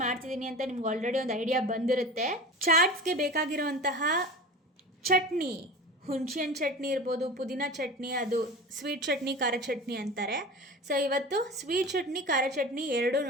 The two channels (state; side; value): normal; both; correlation 0.34